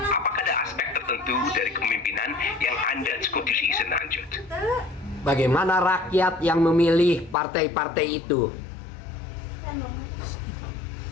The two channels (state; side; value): drops out; right; at 7.4 s